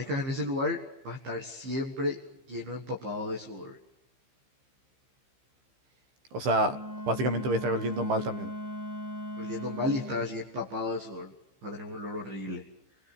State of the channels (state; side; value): late; left; 15 ms